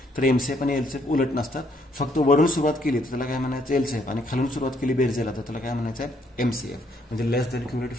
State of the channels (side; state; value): both; normal; correlation 0.69